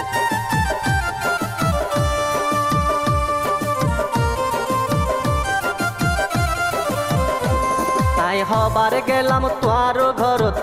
হবার গেলাম তোয়ার ঘরত,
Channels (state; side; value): noise; right; rumble, 24 dB below the sound